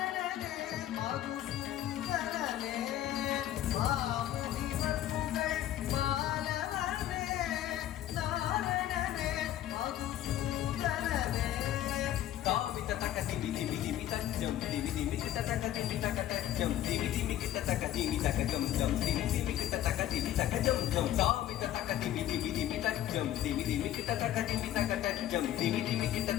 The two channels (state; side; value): quieter; right; 12.5 dB